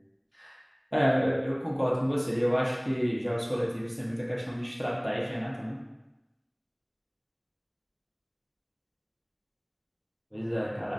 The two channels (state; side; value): identical; both; correlation 1.00